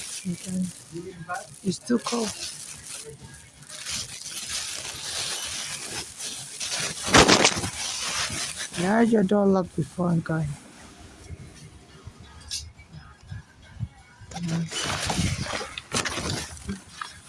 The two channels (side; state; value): both; identical; correlation 1.00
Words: It's too cold. You had your door locked before I'm going.